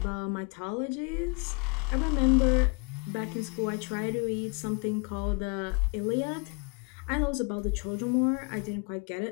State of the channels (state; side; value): quieter; right; 34.4 dB